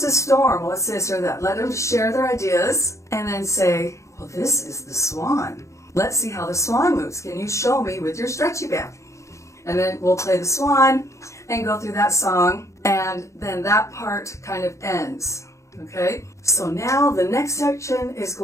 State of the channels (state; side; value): late; right; 0.15 ms